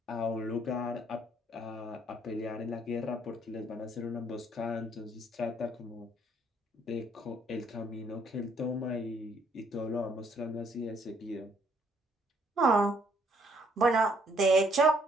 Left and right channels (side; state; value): both; normal; correlation 0.66